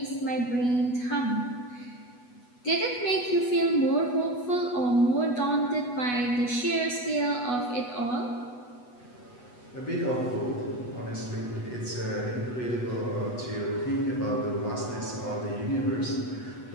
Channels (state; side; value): late; right; 8.2 ms